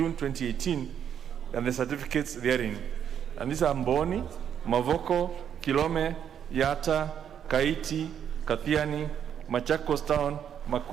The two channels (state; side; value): quieter; left; 8.8 dB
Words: 2018, and the certificates therein. And these are Mboni, Mavoko, Kilome, Yata, Kaiti, Kathiani, Machakos Town,